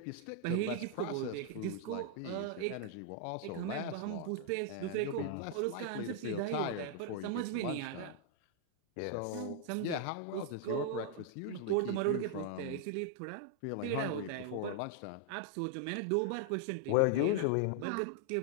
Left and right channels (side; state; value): both; different; correlation 0.00